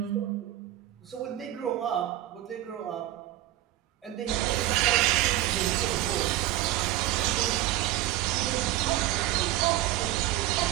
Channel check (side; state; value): left; quieter; 14.6 dB